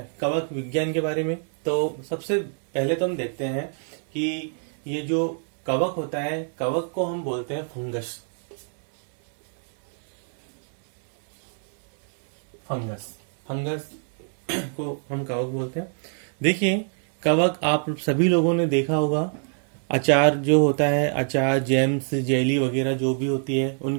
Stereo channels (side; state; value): left; silent; 61 dB below the other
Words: कवक विज्ञान के बारे में। तो सबसे पहले तो हम देखते हैं कि ये जो कवक होता है, कवक को हम बोलते हैं फंगस। फंगस को हम कवक बोलते हैं। देखिए, कवक आप सभी लोगों ने देखा होगा, अचार जो होता है, अचार जैम्स जेली वगैरह जो भी होती है,